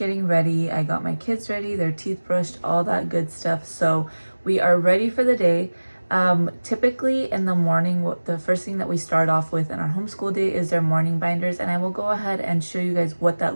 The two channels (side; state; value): both; inverted; correlation -1.00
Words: ready. I got my kids ready, their teeth brushed, all that good stuff. So we are ready for the day. Typically in the morning, the first thing that we start off with in our homeschool day is their morning binders, and I will go ahead and show you guys what